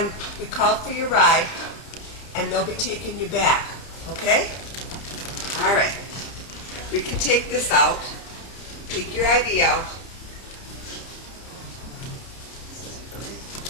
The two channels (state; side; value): late; right; 30 ms